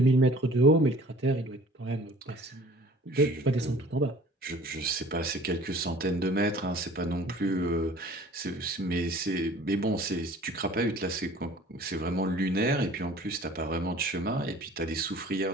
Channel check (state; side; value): normal; both; correlation 0.49